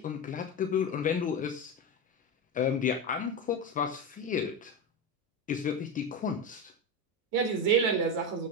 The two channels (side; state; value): both; normal; correlation 0.16